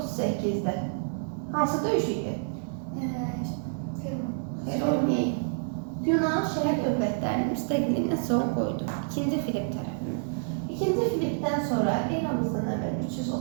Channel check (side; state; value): left; silent; digital silence